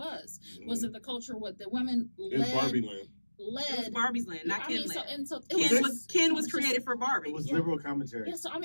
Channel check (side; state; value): both; inverted; correlation -1.00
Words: Was it the culture what the women in Barbie land? It was led? Barbie's land, not I Ken mean, so land. and so it Ken was just- created for Barbie. It was Yeah. liberal commentary. Yeah, so I